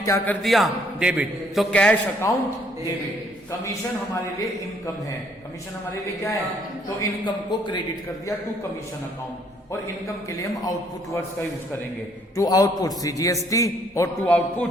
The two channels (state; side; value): normal; both; correlation 0.65